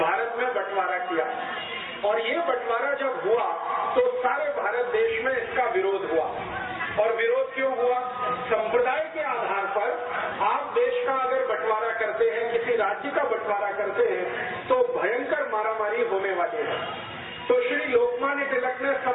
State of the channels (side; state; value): both; identical; correlation 1.00